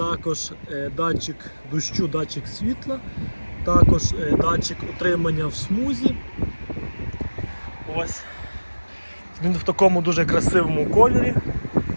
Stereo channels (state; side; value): inverted; both; correlation -1.00